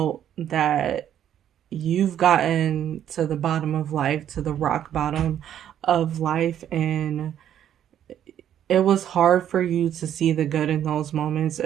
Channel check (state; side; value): quieter; left; 10.3 dB